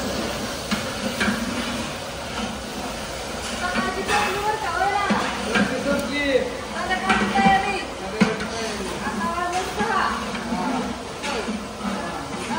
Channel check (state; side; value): identical; both; correlation 1.00